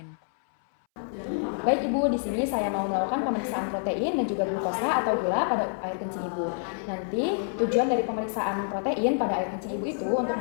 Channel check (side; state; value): right; silent; 60 dB below the other